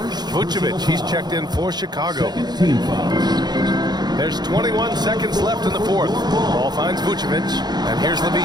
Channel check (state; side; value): late; left; 0.20 ms